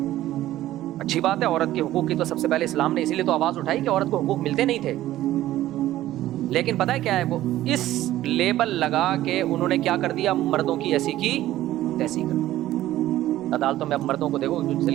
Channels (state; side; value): quieter; left; 14.5 dB